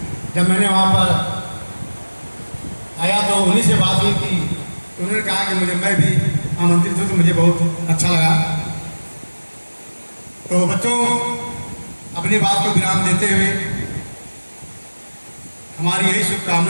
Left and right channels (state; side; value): inverted; both; correlation -1.00